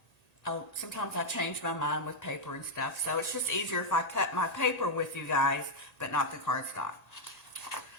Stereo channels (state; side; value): late; right; 1.8 ms